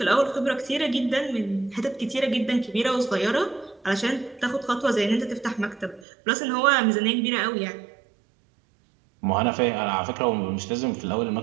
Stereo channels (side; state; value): left; drops out; at 6.1 s